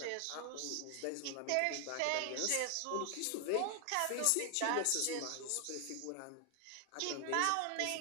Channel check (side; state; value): both; different; correlation 0.00